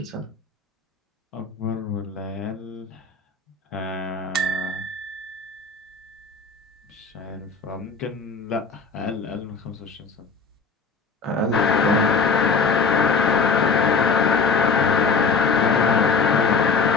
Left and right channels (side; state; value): right; quieter; 4.8 dB